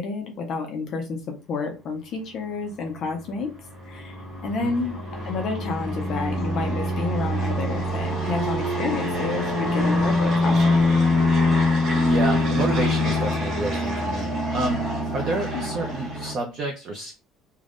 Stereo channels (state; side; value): normal; both; correlation 0.72